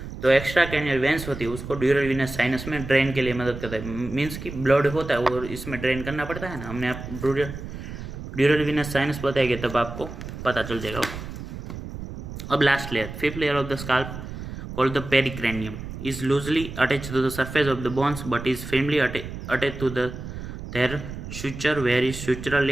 तो एक्स्ट्रा कैनियल वेंस होती है उसको ड्यूरल विनस साइनस में ड्रेन के लिए मदद करता है। मीन्स कि ब्लड होता है वो इसमें ड्रेन करना पड़ता है ना, हमने आप ड्यूरल विनस साइनस बताएंगे तब आपको पता चल जाएगा। अब last layer, fifth layer of the scalp called the pericranium is loosely attached to the surface of the bones but is firmly attached to their suture where is sutural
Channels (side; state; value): right; noise; rumble, 10 dB below the sound